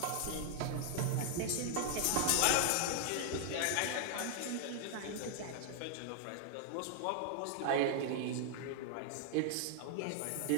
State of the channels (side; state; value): both; different; correlation 0.00